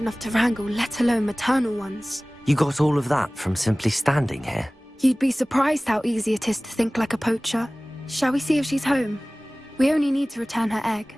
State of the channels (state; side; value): normal; both; correlation 0.98